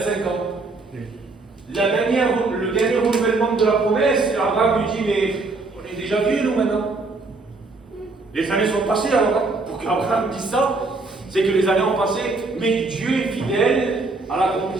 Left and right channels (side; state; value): left; quieter; 3.6 dB